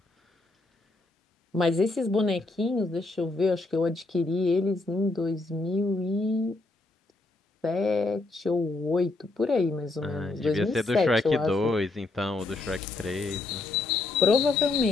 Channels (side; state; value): right; quieter; 3.2 dB